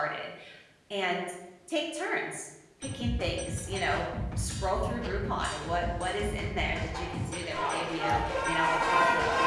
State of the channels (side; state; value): both; identical; correlation 1.00